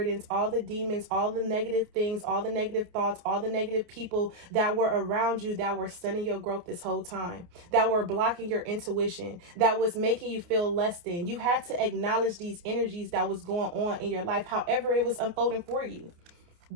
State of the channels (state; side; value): late; left; 29 ms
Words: all the demons, all the negative things, all the negative thoughts, all the negative people that were around you that were stunning your growth this whole time, that were blocking your intuition, that was making you feel less than. You had to acknowledge these energies that was going on in your life, however it was unfolding for you.